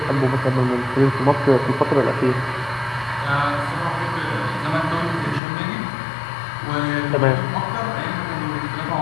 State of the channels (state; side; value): drops out; right; at 5.4 s